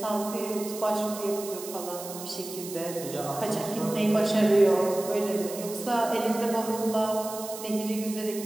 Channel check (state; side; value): noise; right; hiss, 11 dB below the sound